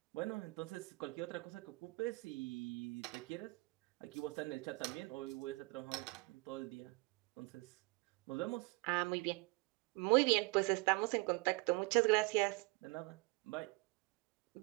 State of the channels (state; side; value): quieter; left; 25.8 dB